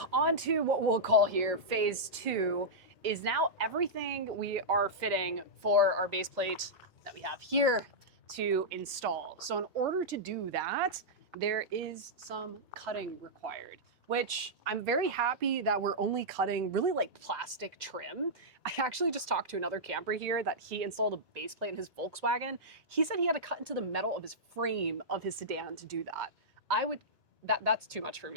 on to what we'll call here phase 2 is now everything we are fitting for our base plate that we have here to install. So in order to do that, there is some cutting required, which I'm very happy that we're only cutting really like plastic trim. I actually just talked to another camper here that he installed a base plate in his Volkswagen. He said he had to cut into the metal of his frame of his sedan to do that. That's too much for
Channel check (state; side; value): normal; both; correlation -0.10